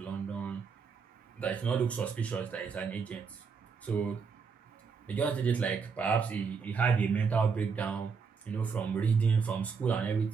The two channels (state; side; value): quieter; left; 5.6 dB